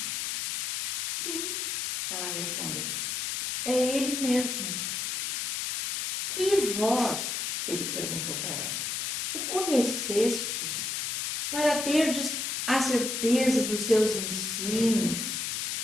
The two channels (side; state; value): left; noise; hiss, 1 dB below the sound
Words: Sim, ela respondeu, é ele mesmo. E vós, ele perguntou para ela, o conhecestes para terdes a certeza dos seus ensinos?